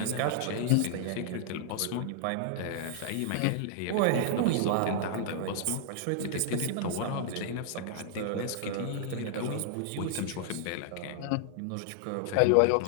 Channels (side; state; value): both; different; correlation -0.01